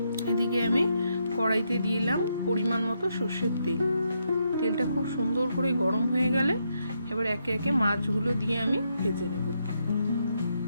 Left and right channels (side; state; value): both; inverted; correlation -0.79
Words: এদিকে আমি কড়াইতে দিলাম পরিমাণ মতো সর্ষের তেল। তেলটা খুব সুন্দর করে গরম হয়ে গেলে এবার একে একে মাছগুলো দিয়ে আমি ভেজে নেব।